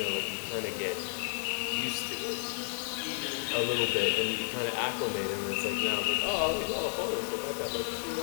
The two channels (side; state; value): right; silent; 56 dB below the other